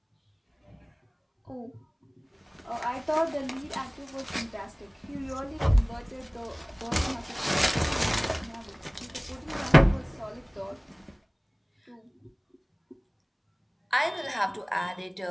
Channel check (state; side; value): identical; both; correlation 1.00